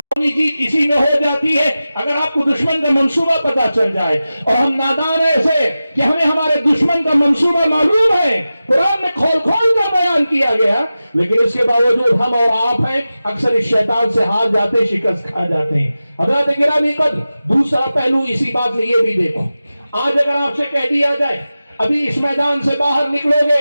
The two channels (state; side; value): inverted; both; correlation -0.94